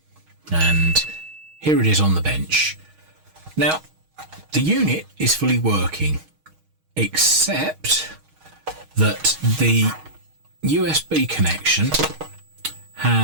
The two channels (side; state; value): left; late; 6.4 ms